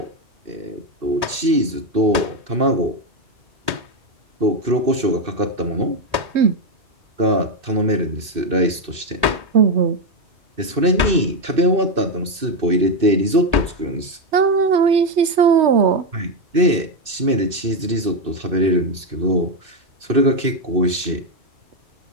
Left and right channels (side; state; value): left; late; 2.6 ms